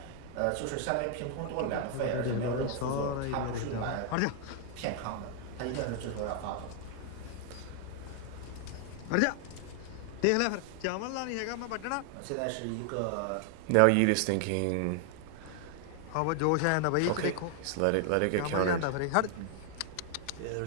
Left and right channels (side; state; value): both; different; correlation 0.00